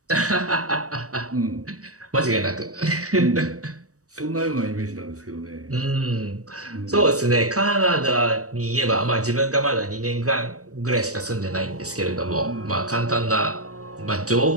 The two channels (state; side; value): late; left; 0.66 ms